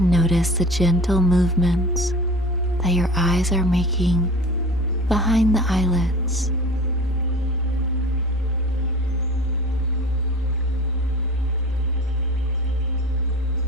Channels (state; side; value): normal; both; correlation 0.38